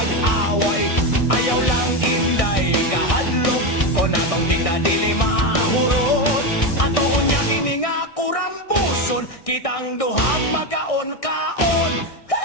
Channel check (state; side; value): late; right; 1.6 ms